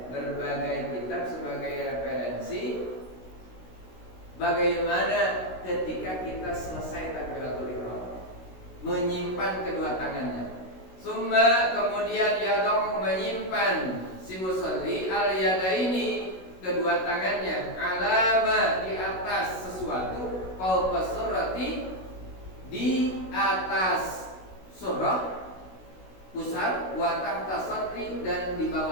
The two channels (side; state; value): right; late; 16 ms